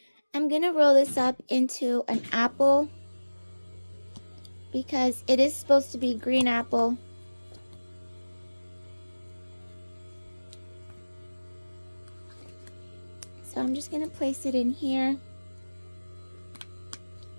I'm going to roll this up into an apple because it is supposed to be green apple. So I'm just going to place it in here.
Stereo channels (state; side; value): inverted; both; correlation -1.00